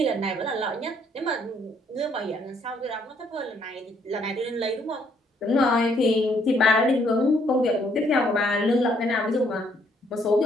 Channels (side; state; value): both; normal; correlation 0.68